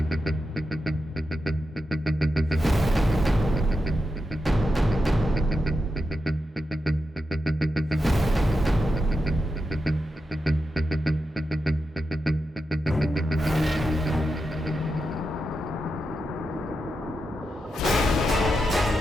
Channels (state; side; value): normal; both; correlation 0.88